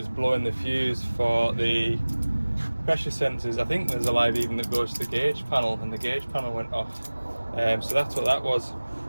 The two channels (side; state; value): both; inverted; correlation -1.00